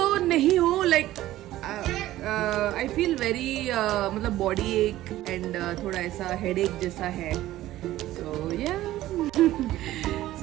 नहीं हूँ, लाइक आई फील वेरी मतलब बॉडी एक एंड थोड़ा ऐसा हेडेक जैसा है। So yeah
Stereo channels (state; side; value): quieter; left; 15.0 dB